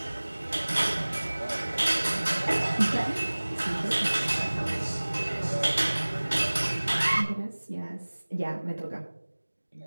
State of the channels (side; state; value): both; inverted; correlation -1.00